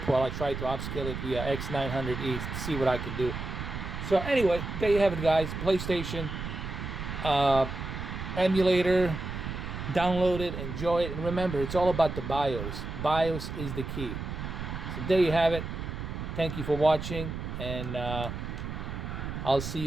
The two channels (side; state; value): right; noise; rumble, 6 dB below the sound